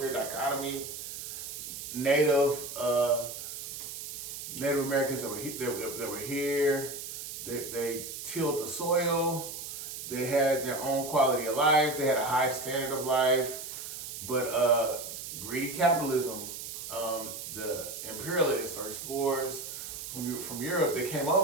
dichotomy. Native Americans that were here, they tilled the soil, they had their own quality of life, they had a high standard of life, but greedy capitalism, the imperialists or explorers from Europe, they came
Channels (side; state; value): right; noise; hiss, 8 dB below the sound